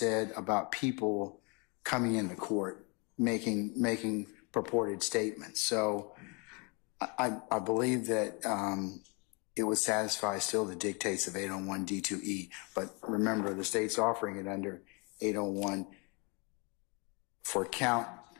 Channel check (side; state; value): right; quieter; 31.0 dB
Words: about people coming into court, making purported statements. So I believe that it would satisfy still the dictates of 801D2E, but remember the state's offering it under 801 for count